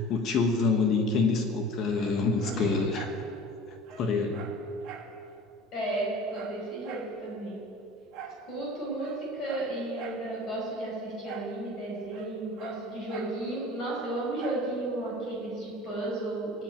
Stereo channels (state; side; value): normal; both; correlation 0.42